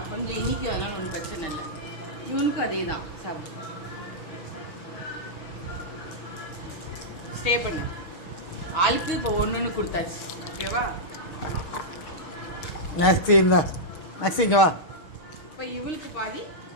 கொஞ்சம் இனிக்கு, அதனால ஒன்றும் பிரச்சனை இல்லை. இவனுக்கும் அதே தான். சாப்பிட்டு ஸ்டே பண்ணு. ஆளுக்கு இப்போ ஒன்று கொடுத்தாச்சு. ஓகேவா? நெக்ஸ்ட் இருந்தா நெக்ஸ்ட் இங்கே வா. இப்போ இவளுக்கு பாதி,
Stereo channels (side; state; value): right; late; 6.5 ms